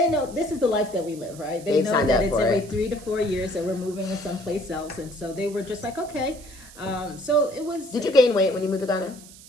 know this is the life that we live, right? They've know that it's every 3 to 4 years that we're moving to someplace else. And so they were just like, okay. So it was... Did you gain weight when you moved to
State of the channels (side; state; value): right; noise; hiss, 19 dB below the sound